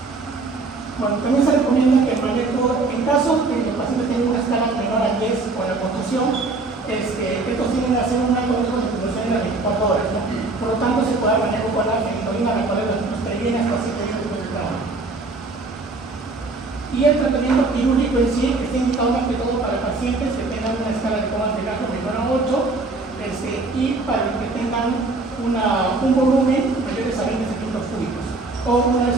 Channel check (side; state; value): left; quieter; 3.5 dB